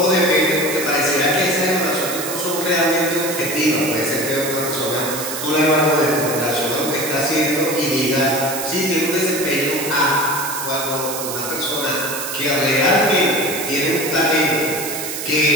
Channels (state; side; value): noise; right; hiss, 6 dB below the sound